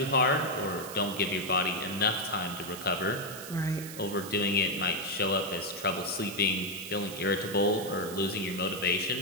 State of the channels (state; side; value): noise; right; hiss, 12 dB below the sound